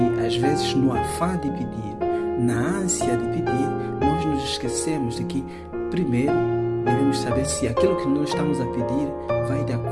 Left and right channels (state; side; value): identical; both; correlation 1.00